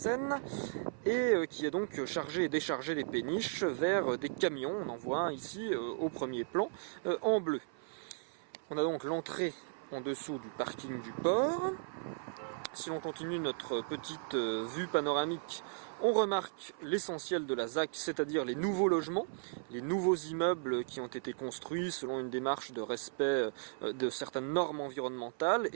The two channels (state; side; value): silent; left; 54 dB below the other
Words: et qui est donc chargé et déchargé des péniches vers des camions. On en voit un ici au premier plan en bleu. On a donc l'entrée en dessous du parking du port. Si l'on continue notre petite vue panoramique, on remarque l'essentiel de la ZAC, c'est-à-dire les nouveaux logements, les nouveaux immeubles qui ont été construits selon une démarche de respect de certaines normes environnementales